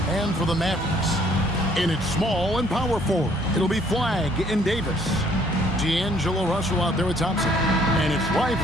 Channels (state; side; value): normal; both; correlation 0.62